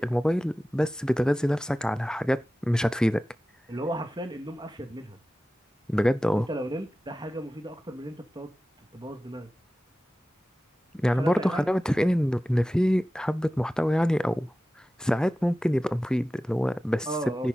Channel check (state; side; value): normal; both; correlation 0.96